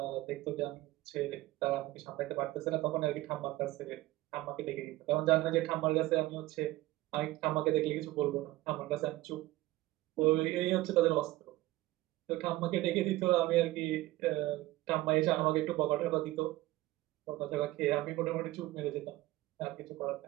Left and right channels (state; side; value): quieter; left; 17.7 dB